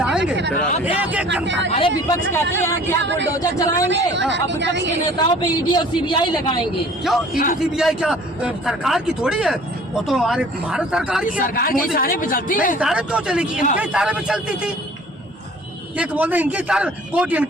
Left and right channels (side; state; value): both; normal; correlation 0.49